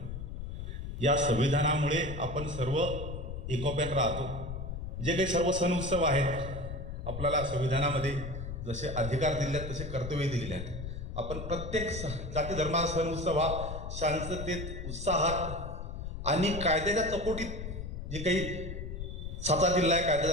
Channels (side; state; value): left; noise; rumble, 7 dB below the sound